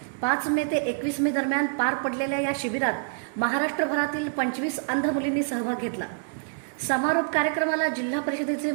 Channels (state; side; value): silent; left; digital silence